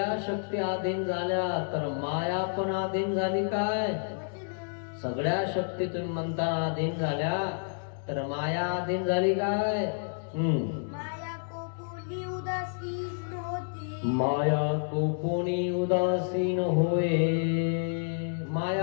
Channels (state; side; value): silent; right; digital silence